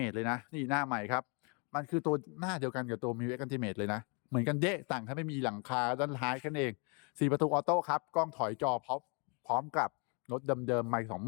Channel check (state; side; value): quieter; right; 34.0 dB